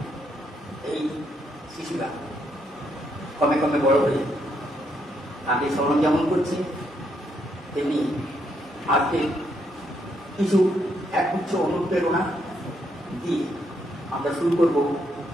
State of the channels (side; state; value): both; normal; correlation 0.76